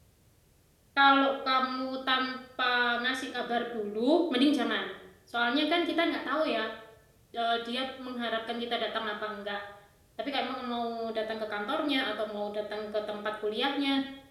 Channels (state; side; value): identical; both; correlation 1.00